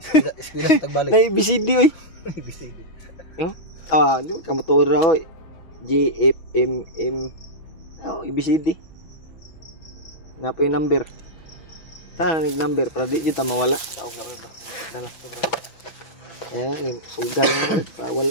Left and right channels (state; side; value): late; right; 6.2 ms